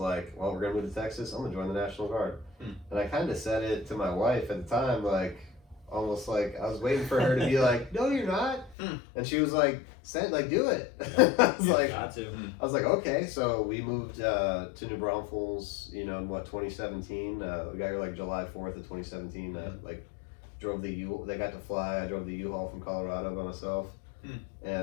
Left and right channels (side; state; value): right; drops out; at 8.8 s